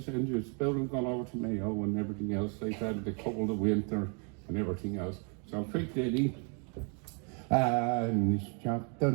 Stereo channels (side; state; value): left; quieter; 38.5 dB